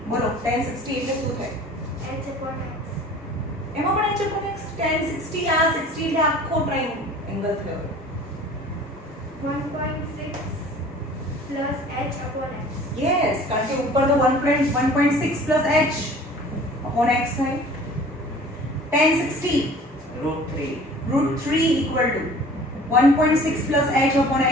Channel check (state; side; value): normal; both; correlation 0.46